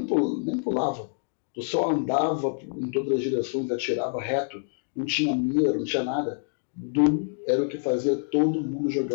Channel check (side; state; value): right; silent; digital silence